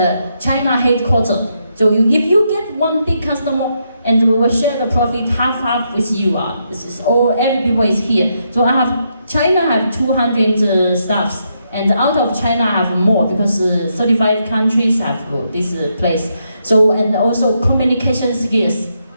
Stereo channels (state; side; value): inverted; both; correlation -0.79